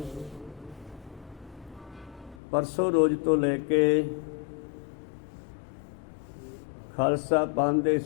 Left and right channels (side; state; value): right; drops out; at 2.4 s